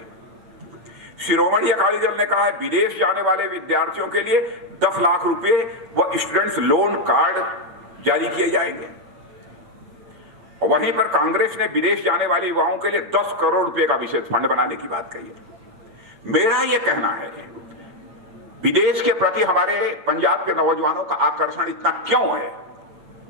शिरोमणि अकाली दल ने कहा है विदेश जाने वाले विद्यार्थियों के लिए 10 लाख रुपए व स्टूडेंट्स लोन कार्ड जारी किए जाएंगे। और वहीं पर कांग्रेस ने विदेश जाने वाले युवाओं के लिए 10 करोड़ रुपए का विशेष फंड बनाने की बात कही है। मेरा यह कहना है विदेश के प्रति हमारे पंजाब के नौजवानों का आकर्षण इतना क्यों है?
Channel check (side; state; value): left; late; 8.9 ms